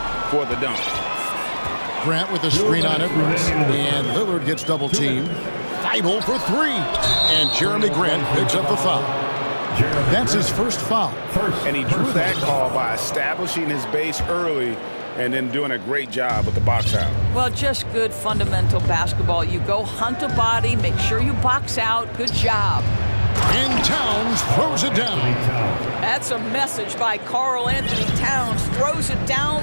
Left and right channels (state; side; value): inverted; both; correlation -1.00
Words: for the dunk. Grant with a screen on Edwards, and Lillard gets double teamed. Thibault for 3, and Jeremy Grant picks up the foul. That's his first foul. And he drew that call by establishing his base early and then doing a great job with the box out. Well, just good fundamental basketball. You go hunt a body, make sure you box out. Good job. And Towns throws it down. That's a message by Karl Anthony Towns. Throws it